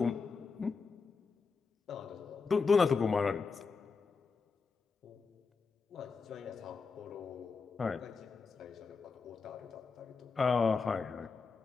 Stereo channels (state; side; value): quieter; right; 4.9 dB